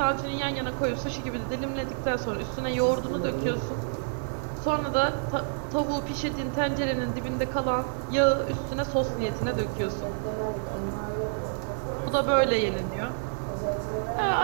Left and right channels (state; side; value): silent; left; digital silence